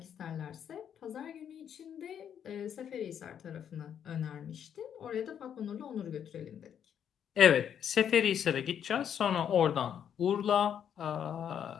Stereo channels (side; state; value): right; quieter; 8.8 dB